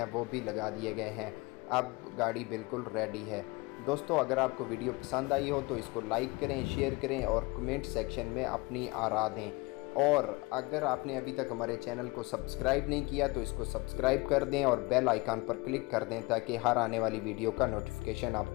वो भी लगा दिए गए हैं। अब गाड़ी बिल्कुल रेडी है। दोस्तों अगर आपको वीडियो पसंद आई हो तो इसको लाइक करें, शेयर करें और कमेंट सेक्शन में अपनी आरा दें। और अगर आपने अभी तक हमारे चैनल को सब्सक्राइब नहीं किया तो इसको सब्सक्राइब कर दें और बेल आइकन पर क्लिक कर दें ताकि हर आने वाली वीडियो का नोटिफिकेशन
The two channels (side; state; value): right; quieter; 24.6 dB